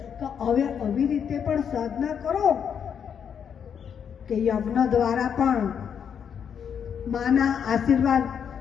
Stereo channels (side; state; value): right; quieter; 7.7 dB